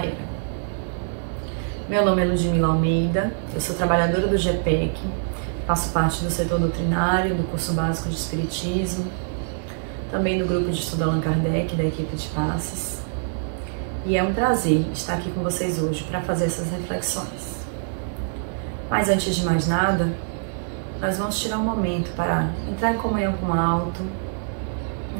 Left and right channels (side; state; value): left; silent; digital silence